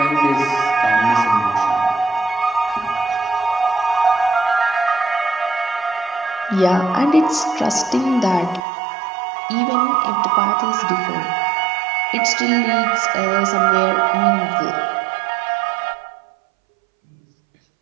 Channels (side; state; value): left; drops out; at 8.6 s